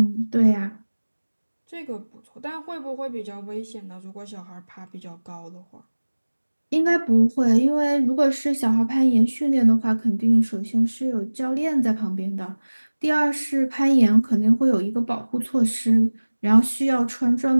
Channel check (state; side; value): inverted; both; correlation -1.00